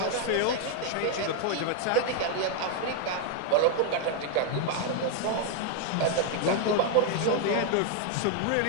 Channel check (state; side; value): different; both; correlation 0.00